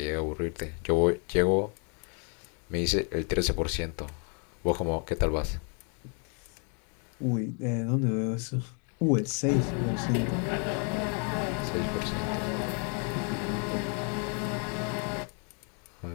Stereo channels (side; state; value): right; quieter; 39.0 dB